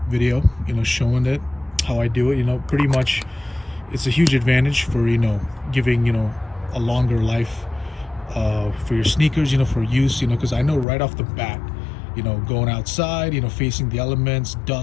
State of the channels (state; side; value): drops out; right; at 10.9 s